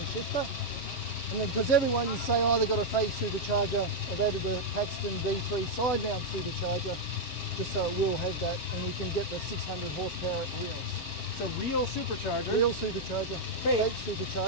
shifter. And then, because everyone is saying, oh, they've got a fake supercharger, I've added a Paxton D3 side mount supercharger just so it will have that, and you can get the 600 horsepower wheels. So real supercharger. Real supercharger, fake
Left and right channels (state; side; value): normal; both; correlation -0.01